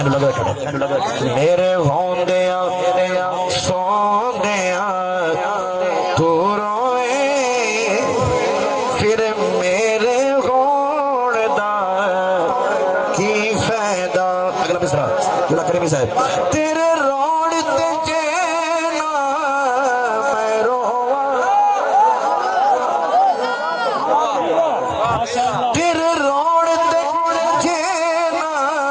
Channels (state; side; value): identical; both; correlation 1.00